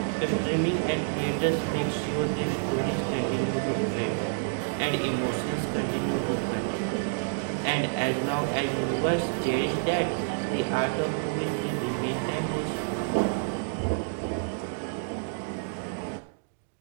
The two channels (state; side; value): silent; left; digital silence